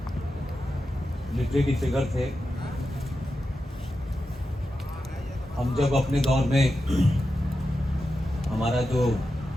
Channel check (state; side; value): normal; both; correlation 0.90